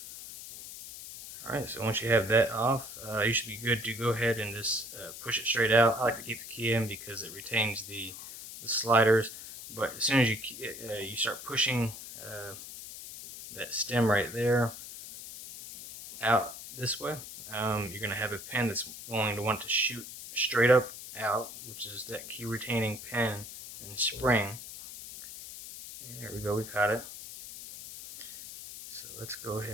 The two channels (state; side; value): noise; left; hiss, 12 dB below the sound